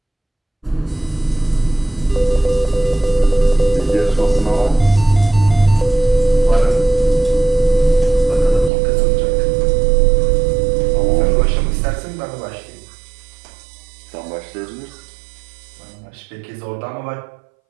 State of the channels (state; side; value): drops out; left; at 8.7 s